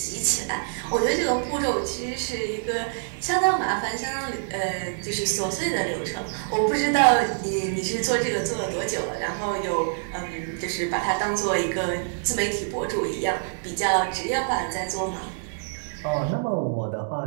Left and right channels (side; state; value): left; silent; digital silence